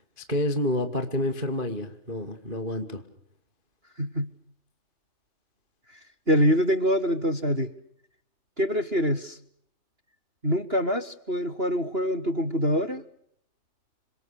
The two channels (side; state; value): left; late; 2.9 ms